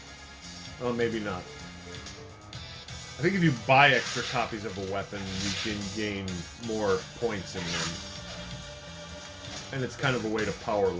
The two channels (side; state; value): both; identical; correlation 1.00